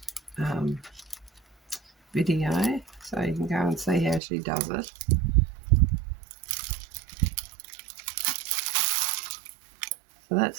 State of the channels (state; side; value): drops out; left; at 4.2 s